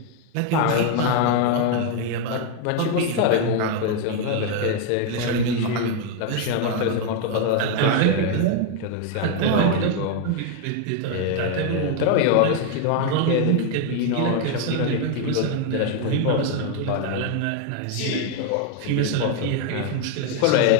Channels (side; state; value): both; different; correlation 0.01